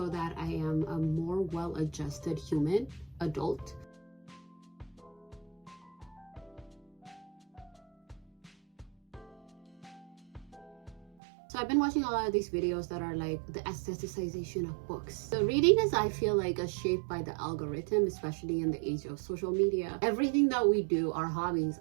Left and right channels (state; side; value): drops out; left; at 11.1 s